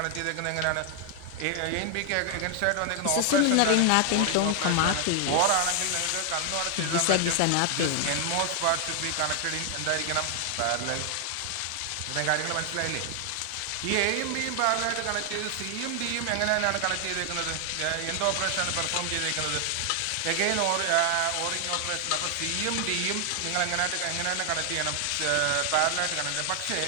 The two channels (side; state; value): both; different; correlation 0.00